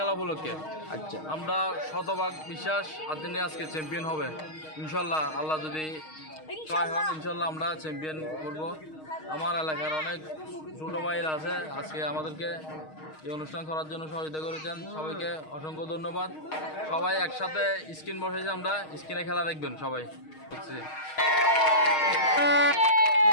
উপলক্ষে। আচ্ছা, আমরা শতভাগ বিশ্বাস আর্জেন্টিনা আজকে চ্যাম্পিয়ন হবে ইনশাল্লাহ। আল্লাহ যদি সহায় হন ইনশাল্লাহ আমরা চ্যাম্পিয়ন করব। আমার এলাকার অনেক ছোটো ভাইরা আছে, আজকে আমাদেরকে এই অনুষ্ঠান করার জন্য সহযোগিতা করেছেন। সবাইকে অসংখ্য ধন্যবাদ। সবাই একসাথে স্ক্রিন বসেছে, আমরা স্ক্রিনে খেলা দেখবেন সবাই।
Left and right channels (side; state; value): right; late; 6.4 ms